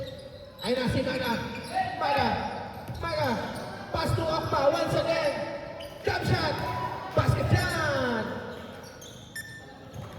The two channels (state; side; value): identical; both; correlation 1.00